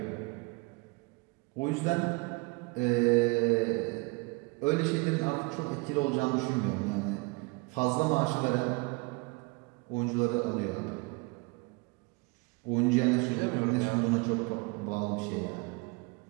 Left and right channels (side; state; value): left; quieter; 28.1 dB